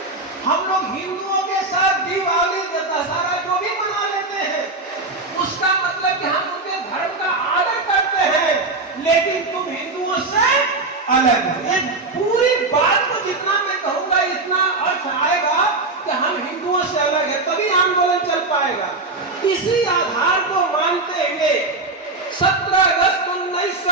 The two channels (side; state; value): left; quieter; 3.3 dB